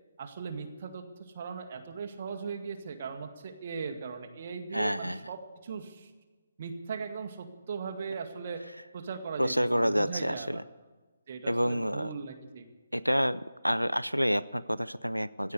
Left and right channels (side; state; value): both; inverted; correlation -0.95